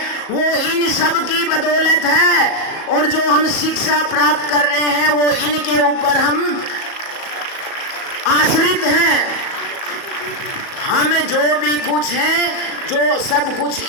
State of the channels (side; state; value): right; late; 37 ms